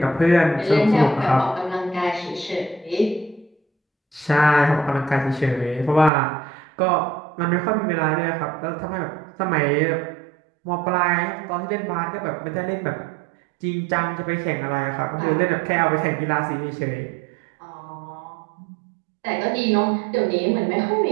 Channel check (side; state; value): left; drops out; at 6.1 s